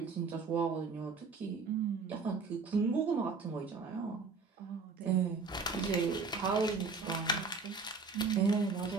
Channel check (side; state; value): left; quieter; 4.6 dB